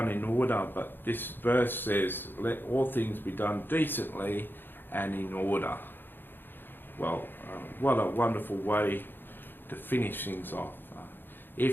in order, but this verse says let all things be done decently and in order. Well, what a wonderful way to finish things off.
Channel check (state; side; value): late; right; 0.097 ms